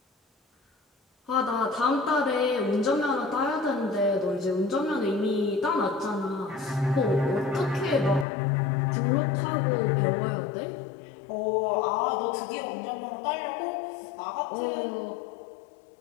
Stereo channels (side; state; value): right; drops out; at 8.2 s